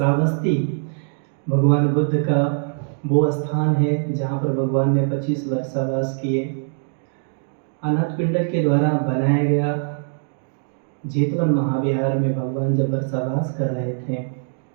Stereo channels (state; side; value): silent; left; digital silence